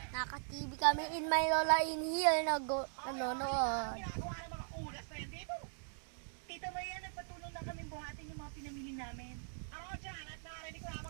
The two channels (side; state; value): left; silent; digital silence